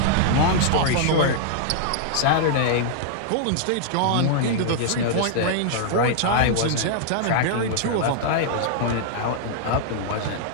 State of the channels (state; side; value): different; both; correlation -0.01